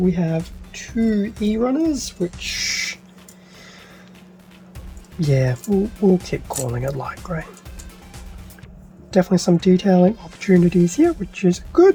have 2 E runners, which, yeah, we'll keep calling it light grey. Definitely some detailing opportunities here, which is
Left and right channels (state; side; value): identical; both; correlation 1.00